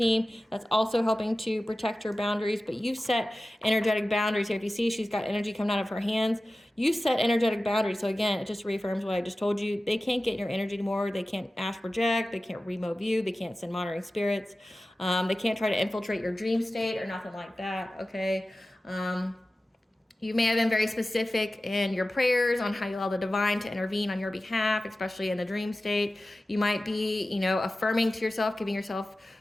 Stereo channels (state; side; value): normal; both; correlation 0.95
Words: That's also helping to protect your boundaries. But you've set energetic boundaries here. If you see, she's got energy coming out of her hands. You set energetic boundaries. So again, it just reaffirms what I just told you. They can't get in your energy anymore. They can't astral project. They can't remote view. They can't send monitoring spirits. They can't try to infiltrate your dream state or nothing like that. Okay. You may have been very specific in your prayers on how you allow the divine to intervene on your behalf, especially in the dream state. You might be, you know, affirming to yourself, giving yourself